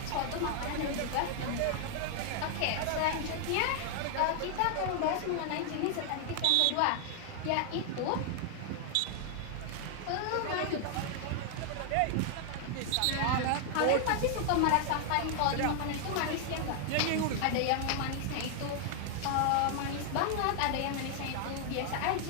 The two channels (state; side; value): different; both; correlation 0.00